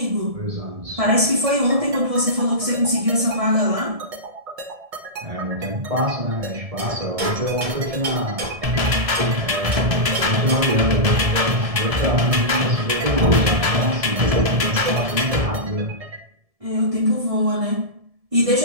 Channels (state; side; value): late; left; 1.7 ms